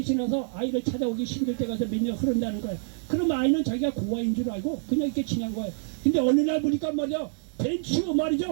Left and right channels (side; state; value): left; silent; digital silence